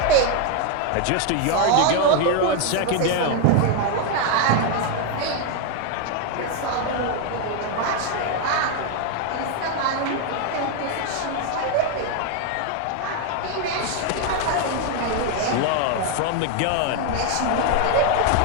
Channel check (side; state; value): both; different; correlation 0.01